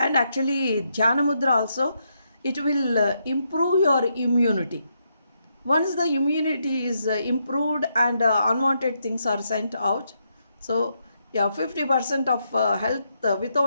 actually Dhyana Mudra also, it will improve your immunity. Once the immunity is improved and unwanted things are sent out, so yeah, 50% of health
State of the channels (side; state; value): both; inverted; correlation -0.79